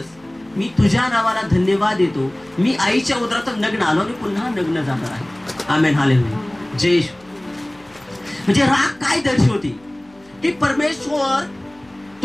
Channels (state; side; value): noise; left; hum, 30 dB below the sound